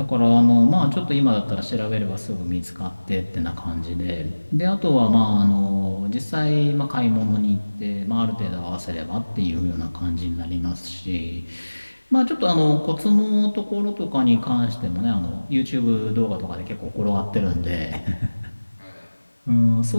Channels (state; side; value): inverted; both; correlation -1.00